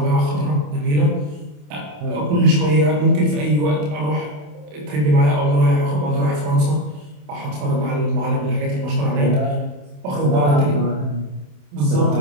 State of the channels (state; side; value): late; left; 27 ms